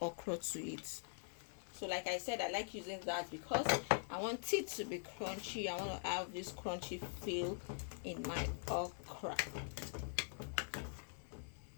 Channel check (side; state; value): right; silent; digital silence